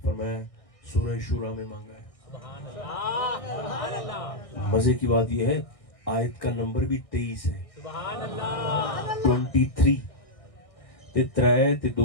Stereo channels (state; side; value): late; right; 1.6 ms